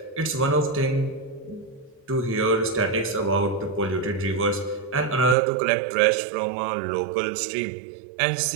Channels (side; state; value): left; drops out; at 5.4 s